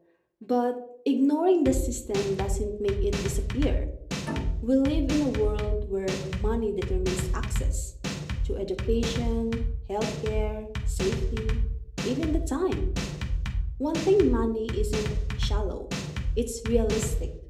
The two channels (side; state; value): both; identical; correlation 1.00